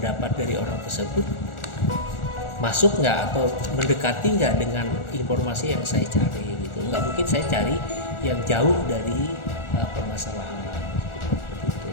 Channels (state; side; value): late; right; 1.4 ms